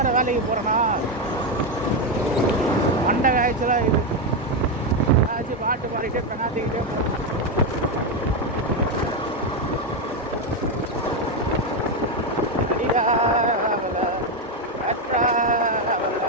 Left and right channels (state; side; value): normal; both; correlation 0.08